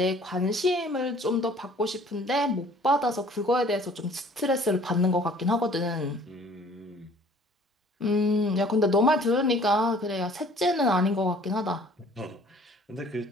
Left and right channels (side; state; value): both; normal; correlation 0.53